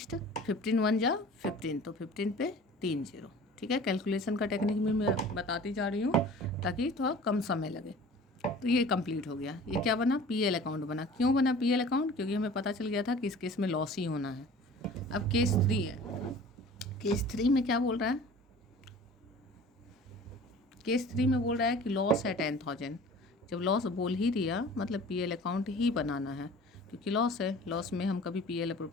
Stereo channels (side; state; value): both; normal; correlation 0.44